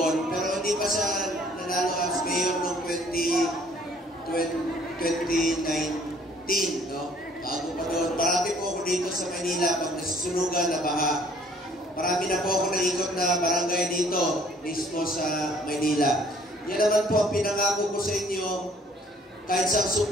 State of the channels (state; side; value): normal; both; correlation 0.59